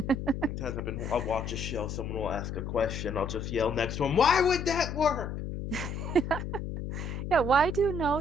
Sometimes I'll watch a show, someone will ask a question, I'll just yell next to him, "Why would that work?" Yeah, why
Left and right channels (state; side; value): noise; left; hum, 5 dB below the sound